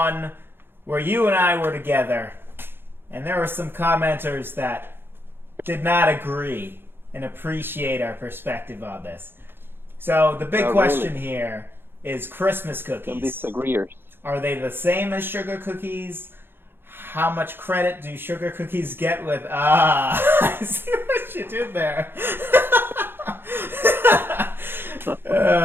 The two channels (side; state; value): left; late; 0.10 ms